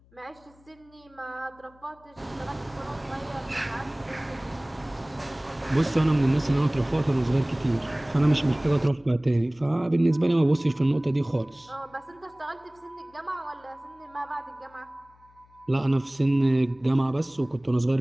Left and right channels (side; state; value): left; noise; hum, 29 dB below the sound